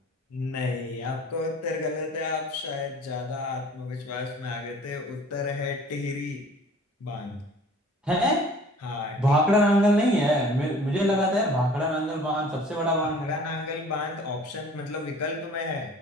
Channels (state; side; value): normal; both; correlation 0.49